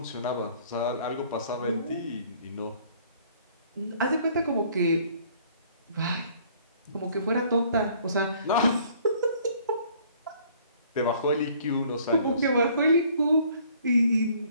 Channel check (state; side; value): inverted; both; correlation -0.58